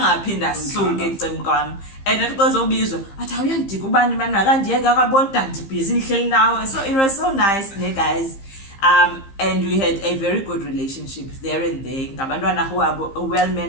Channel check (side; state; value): right; late; 15 ms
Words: suke ecem kwami and athi xozobizwa athi awuyandika ubani manje akandiyeke akabona ndibhizi nihleli nawe so it was so nice ne guys. And we had a very good relationship there and there. Ngabantwana who are well